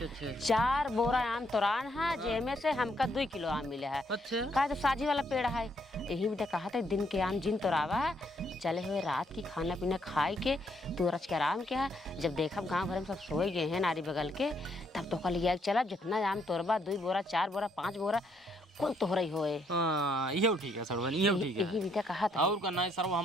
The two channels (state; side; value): normal; both; correlation 0.72